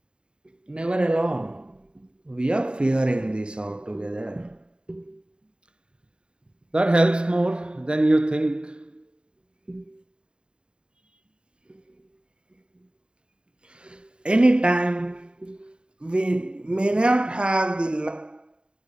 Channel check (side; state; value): left; late; 0.051 ms